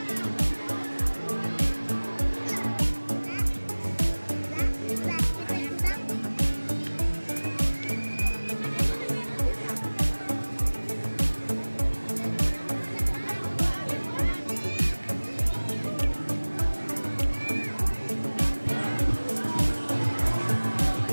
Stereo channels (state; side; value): inverted; both; correlation -1.00